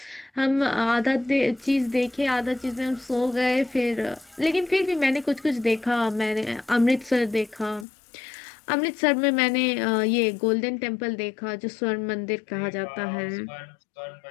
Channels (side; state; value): right; drops out; at 7.9 s